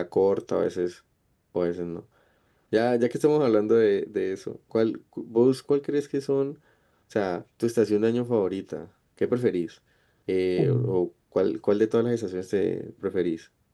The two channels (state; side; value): identical; both; correlation 1.00